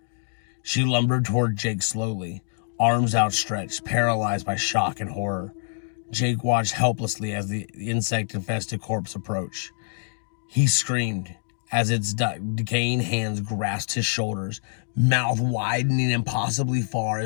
She lumbered toward Jake slowly, arms outstretched, paralyzed by shock and horror. Jake watched helplessly as the insect-infested corpse approached. He screamed as its decaying hands grasped his shoulders, mouth widening impossibly far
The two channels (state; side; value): silent; right; digital silence